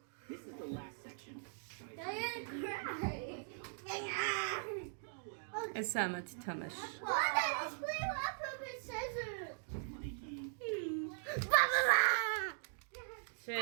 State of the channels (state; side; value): silent; left; digital silence